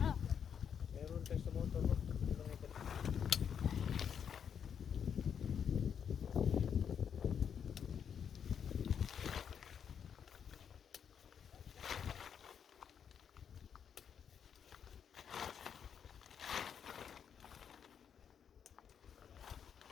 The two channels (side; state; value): right; quieter; 7.7 dB